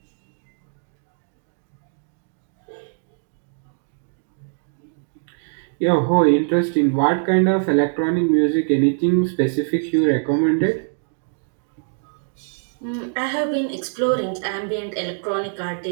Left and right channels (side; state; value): left; silent; digital silence